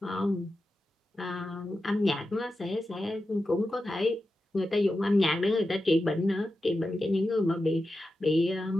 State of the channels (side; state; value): both; normal; correlation 0.91